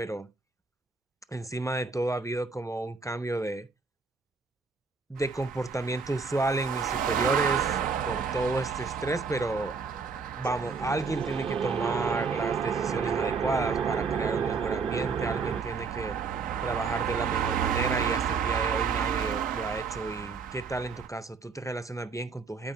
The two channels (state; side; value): quieter; left; 4.8 dB